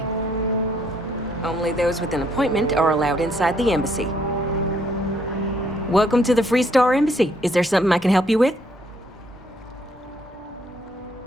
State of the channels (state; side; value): normal; both; correlation 0.68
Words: Only those with an appointment are allowed inside the embassy. Welcome to the Free Star Embassy. Is there something I can help you with?